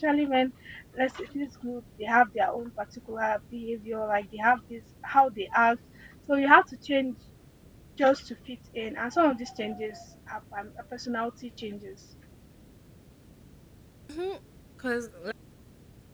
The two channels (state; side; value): identical; both; correlation 1.00